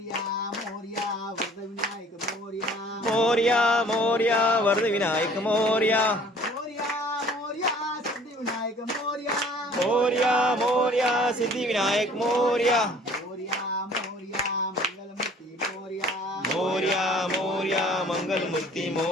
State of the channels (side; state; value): both; normal; correlation 0.52